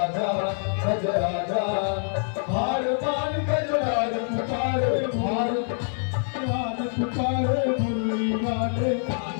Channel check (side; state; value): right; silent; 56 dB below the other